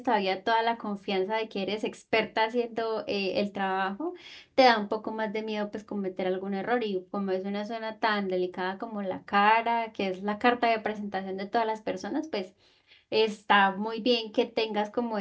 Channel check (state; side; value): identical; both; correlation 1.00